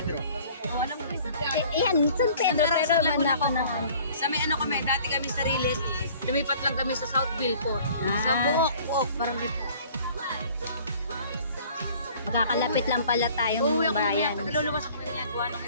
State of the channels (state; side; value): inverted; both; correlation -0.52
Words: Oh, alam mo ba? Yan, San Pedro, pero man ako ng ano. Sa may ano kami, dati kami sa Riles, lumipat lang kami sa Southville po. Sa Buok, parang dito. Magkakalapit lang pala tayong Uuwi ako bayan. mamaya, luluwas ako mamaya, gawa nung